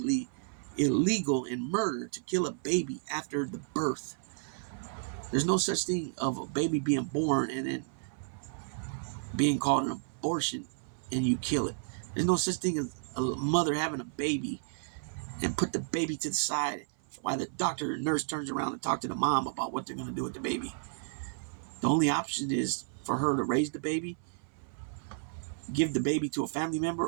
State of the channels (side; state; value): left; silent; 56 dB below the other